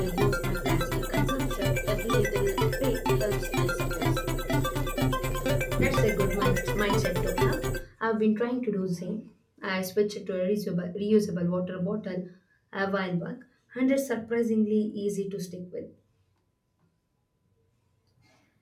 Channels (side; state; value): both; identical; correlation 1.00